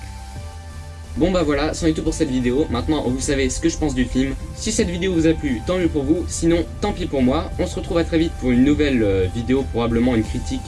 Bon voilà, c'en est tout pour cette vidéo. Maintenant vous savez ce que je pense du film. Si cette vidéo vous a plu, tant mieux pour vous, sinon tant pis pour moi. On se retrouve à très vite pour une nouvelle vidéo, probablement une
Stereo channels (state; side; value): identical; both; correlation 1.00